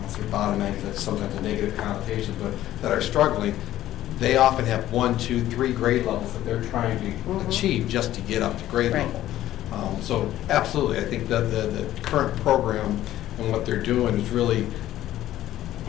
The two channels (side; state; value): right; quieter; 13.6 dB